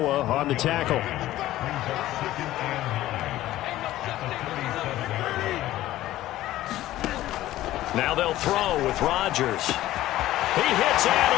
on the tackle. Now they'll throw with Rodgers. He hits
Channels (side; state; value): right; quieter; 15.0 dB